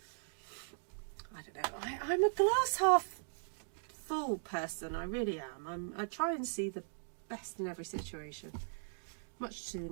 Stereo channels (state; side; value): silent; left; digital silence